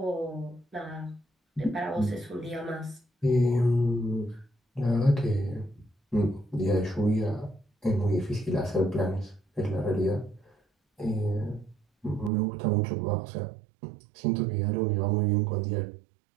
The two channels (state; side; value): drops out; left; at 12.3 s